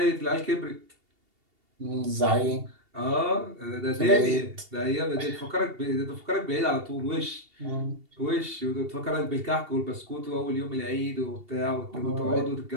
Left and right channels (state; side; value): late; left; 2.8 ms